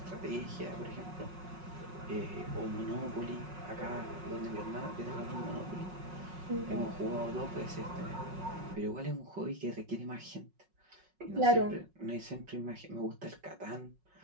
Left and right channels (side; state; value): left; late; 5.4 ms